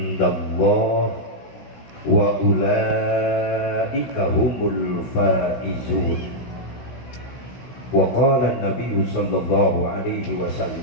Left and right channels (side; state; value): right; late; 16 ms